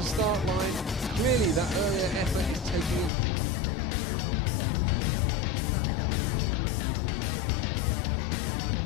start line. Clearly that earlier effort is taking its toll. Still in the river, some way back, it's USA in the bronze medal position. They've had a good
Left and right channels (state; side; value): drops out; right; at 3.1 s